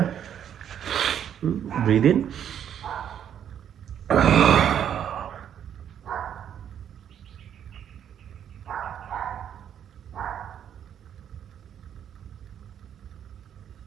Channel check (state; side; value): quieter; left; 9.3 dB